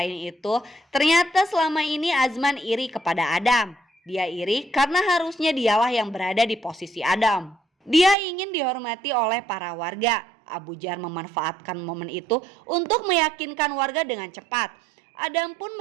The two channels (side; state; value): left; drops out; at 8.2 s